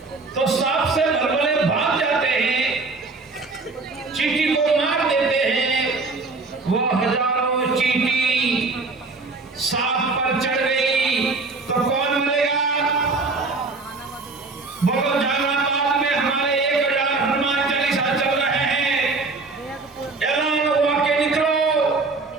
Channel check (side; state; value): left; quieter; 3.8 dB